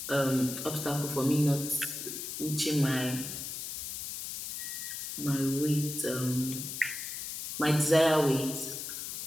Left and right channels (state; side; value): noise; left; hiss, 6 dB below the sound